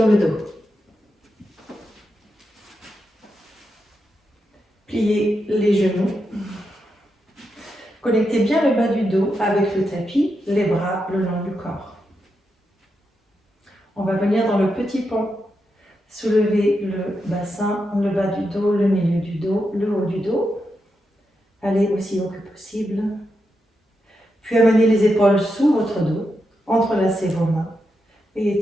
le dos. Pliez les genoux. Connectez bien le bas du dos avec le tapis, les bras le long du corps. On va venir dans le petit pont. Soulevez le bassin, le bas du dos, le milieu du dos, le haut du dos. Allez aussi haut que possible. Puis amenez les épaules sous votre dos, entrelacez vos mains et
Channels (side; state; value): both; normal; correlation 0.85